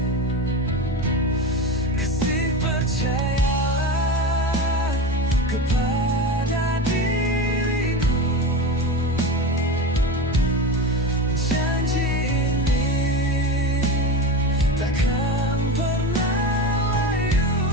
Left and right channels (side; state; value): both; normal; correlation 0.25